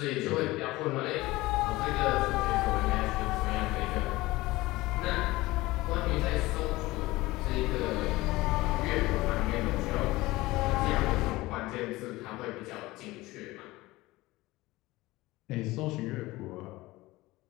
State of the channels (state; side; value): quieter; right; 19.5 dB